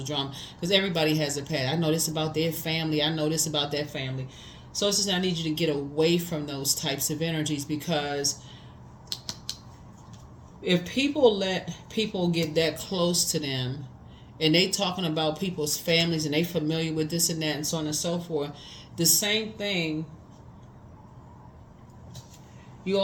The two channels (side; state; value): both; identical; correlation 1.00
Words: drama because everybody has a past. I know this about their family, I know this about that family. So it's just, I need you to get away from those types of energies, because if people let people get that close to them and they talking about people's families and they familiar with this and that and so on and so forth, the same thing, you